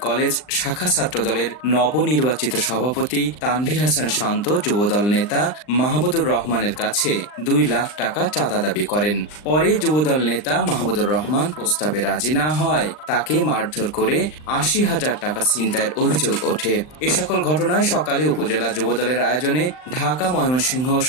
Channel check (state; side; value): late; right; 39 ms